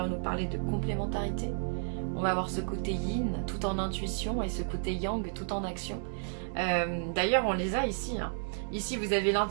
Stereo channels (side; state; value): left; silent; digital silence